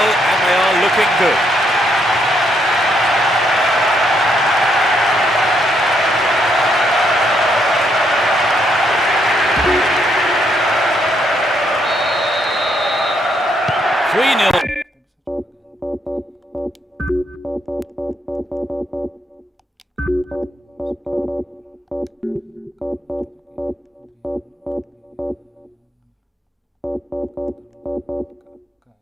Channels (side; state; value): both; normal; correlation 0.75